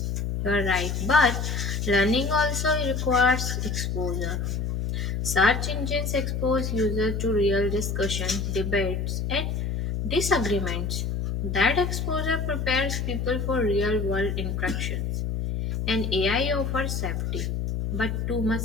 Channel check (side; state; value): left; noise; hum, 1 dB below the sound